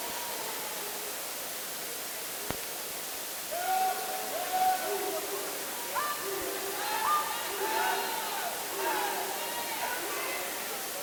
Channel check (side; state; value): both; identical; correlation 1.00